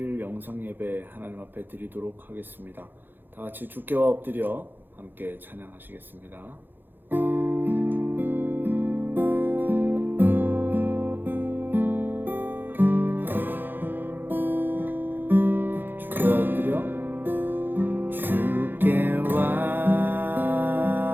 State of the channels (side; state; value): left; late; 0.094 ms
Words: 영상 예배 하나님 앞에 드리도록 하겠습니다. 다 같이 주께와 엎드려 함께 찬양하시겠습니다. 주께와 엎드려 주께와